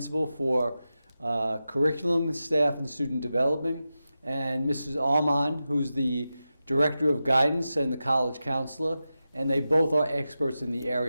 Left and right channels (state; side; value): inverted; both; correlation -0.92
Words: for curriculum, staff, and student development, and Mrs. Armon, who's the director of guidance and the college counselor. And they both are experts in the